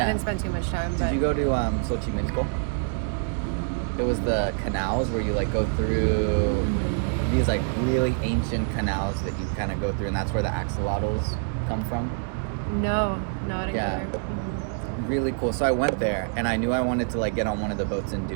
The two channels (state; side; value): silent; left; 61 dB below the other